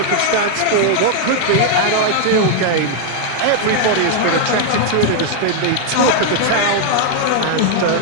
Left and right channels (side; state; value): both; different; correlation 0.00